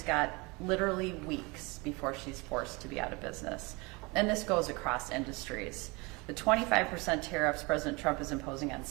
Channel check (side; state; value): left; quieter; 26.5 dB